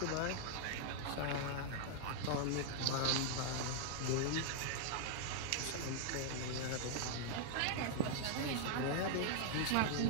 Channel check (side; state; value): both; different; correlation -0.01